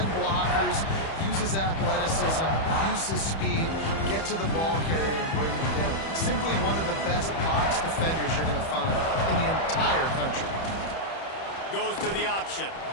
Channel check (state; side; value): late; right; 31 ms